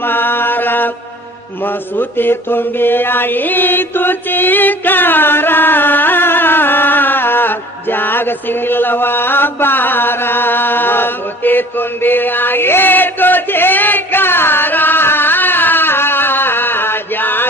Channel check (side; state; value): both; normal; correlation 0.46